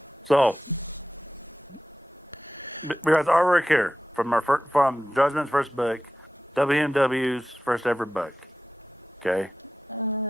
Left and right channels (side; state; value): both; normal; correlation 0.92